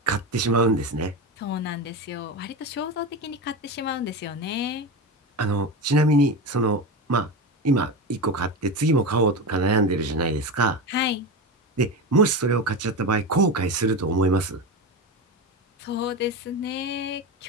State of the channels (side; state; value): both; normal; correlation 0.20